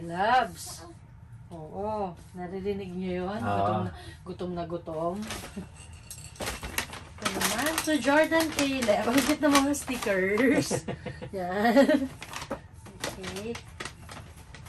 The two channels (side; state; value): both; identical; correlation 1.00